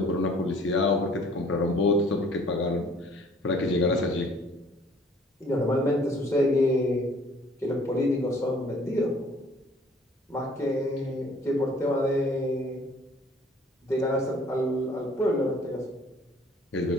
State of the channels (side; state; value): both; normal; correlation 0.55